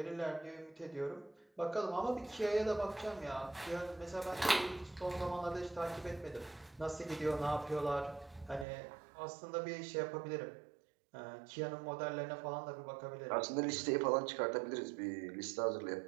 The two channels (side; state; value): left; drops out; at 8.7 s